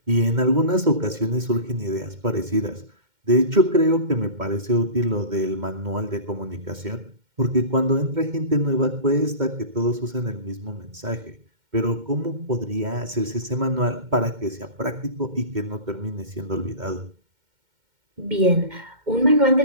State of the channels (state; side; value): late; left; 2.1 ms